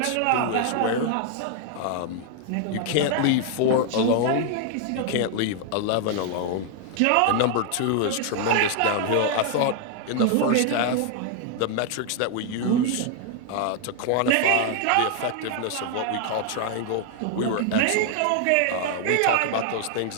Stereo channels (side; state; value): both; different; correlation 0.00